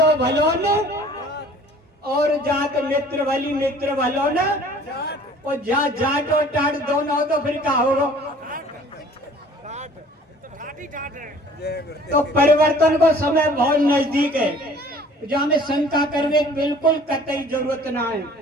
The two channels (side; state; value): both; normal; correlation 0.51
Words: भलो न, और जात मित्र भली मित्र भलो न, और जाट और टाट दोनों हो तो फिर क्या होगा? तो परिवर्तन को समय बहुत नजदीक है, जो हमें शंका करने की बिल्कुल कतई जरूरत ना है।